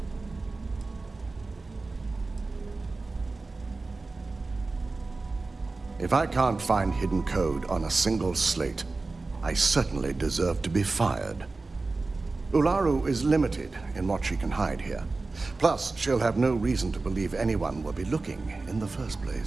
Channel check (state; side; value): quieter; left; 3.6 dB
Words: If I can't find hidden code on a single slate, I certainly deserve to be fired. Ularu is limited in what she can hide here. Plus, she'll have no reason to believe anyone will be looking in the first